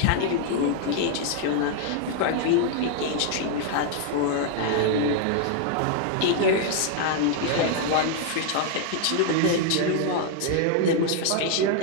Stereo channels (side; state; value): both; different; correlation 0.00